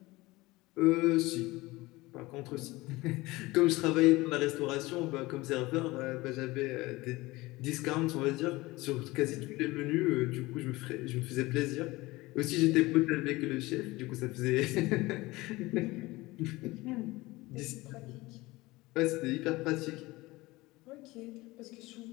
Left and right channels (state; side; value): quieter; right; 20.7 dB